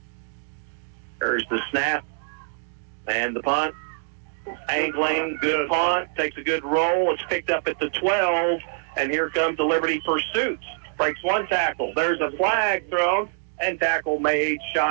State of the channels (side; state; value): left; silent; digital silence